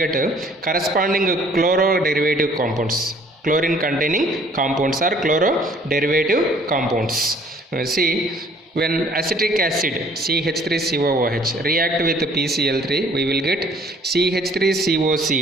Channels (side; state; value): both; normal; correlation 0.57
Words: corresponding chloro-derivative compounds. Chlorine containing compounds are chloro-derivative compounds. See, when acetic acid CH3COOH react with PCl3, we will get